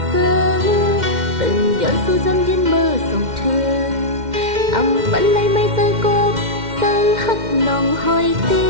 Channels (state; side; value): late; left; 2.1 ms